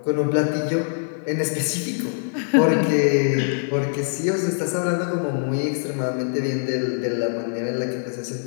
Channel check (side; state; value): right; silent; digital silence